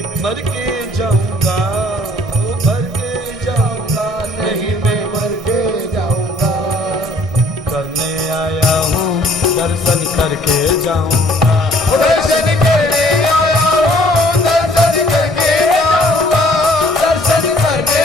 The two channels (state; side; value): normal; both; correlation 0.58